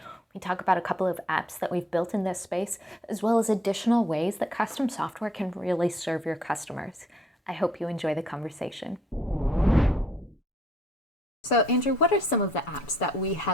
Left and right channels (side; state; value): both; normal; correlation 0.68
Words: We talk about a couple of apps that we've built in this space, as well as additional ways that custom software can really serve your customers. I hope you enjoy the conversation. So, Andrew, what are some of the apps that we